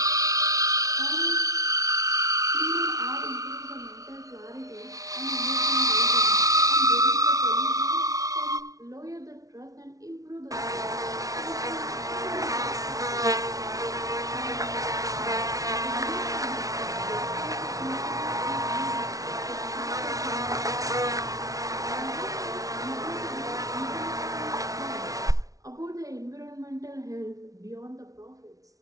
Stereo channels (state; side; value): late; left; 0.17 ms